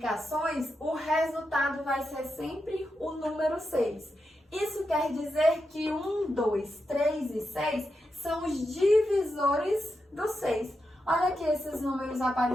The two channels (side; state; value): both; normal; correlation 0.87